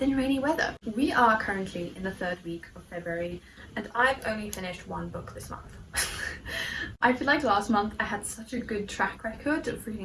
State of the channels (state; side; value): identical; both; correlation 1.00